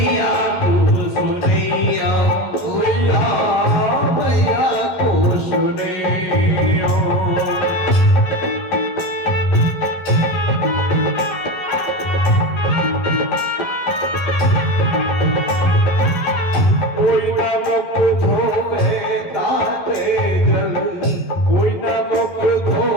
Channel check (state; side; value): late; right; 11 ms